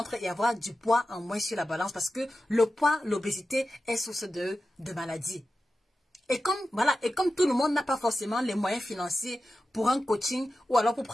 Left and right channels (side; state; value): both; normal; correlation 0.93